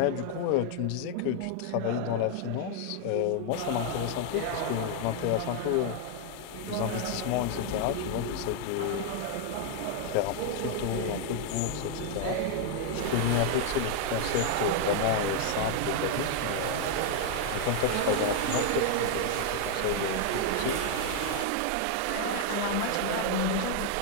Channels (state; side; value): different; both; correlation 0.00